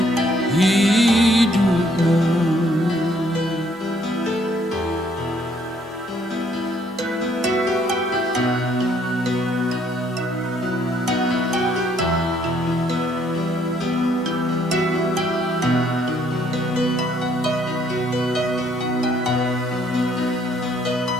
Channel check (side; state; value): both; normal; correlation 0.66